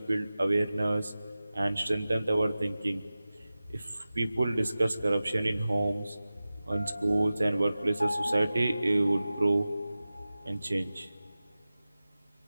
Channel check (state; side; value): inverted; both; correlation -0.96